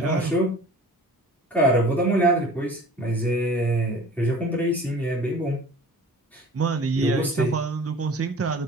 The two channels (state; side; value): normal; both; correlation 0.43